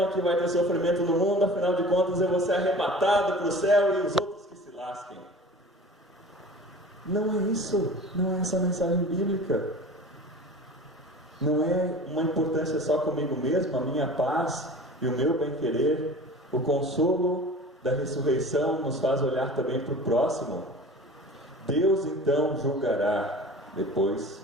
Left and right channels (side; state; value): both; normal; correlation 0.40